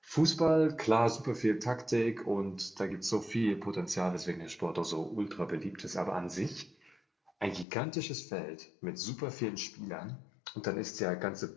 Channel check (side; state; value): right; drops out; at 7.7 s